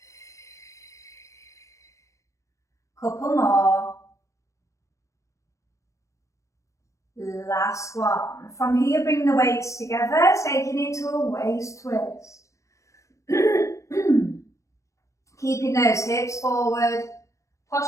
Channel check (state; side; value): late; right; 0.15 ms